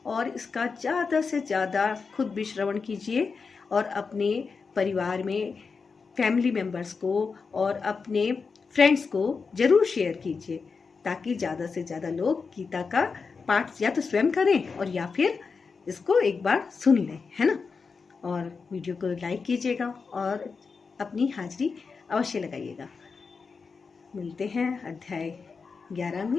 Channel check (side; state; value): right; quieter; 5.0 dB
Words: और इसका ज़्यादा से ज़्यादा खुद भी श्रवण कीजिए और अपने परिवार में फैमिली मेम्बर्स को और अपने फ्रेंड्स को ज़रूर शेयर कीजिए ताकि ज़्यादा से ज़्यादा लोग गीता का पाठ या तो स्वयं करें और या फिर इसको एक बार सुन लें, है ना। और वीडियो को लाइक कीजिएगा और अपनी हाजिरी अवश्य लगाइएगा। मिलते हैं अध्याय 11